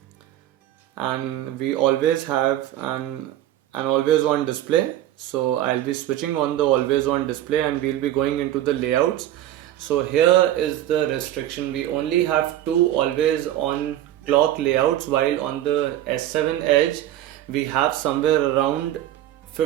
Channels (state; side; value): quieter; left; 13.0 dB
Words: And we always have an always on display. So I'll be switching on the always on display and we'll be going into the layouts. So here is the restriction: we only have 2 always on clock layouts, while on the S7 Edge we have somewhere around